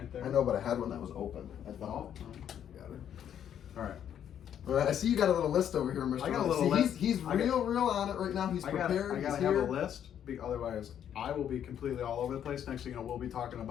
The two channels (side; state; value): right; quieter; 9.6 dB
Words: there. I know, but I had one that was open. I Oh, thought. Got it. all right. All right. I see you got a little list over here, Mr. I got a Ron. little See, list. He's I got- real on it right now. He's I prepared. gotta He's have here. a list. Otherwise, I will be completely all over the place. Next thing you know, we'll be talking